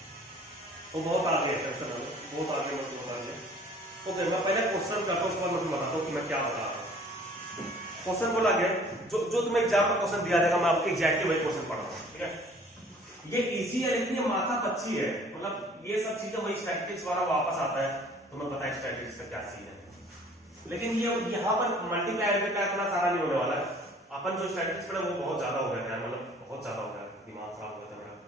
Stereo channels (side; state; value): both; normal; correlation 0.53